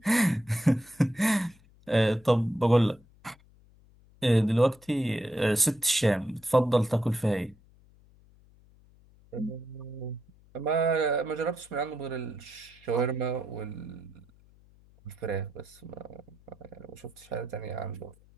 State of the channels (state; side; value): noise; left; hum, 28 dB below the sound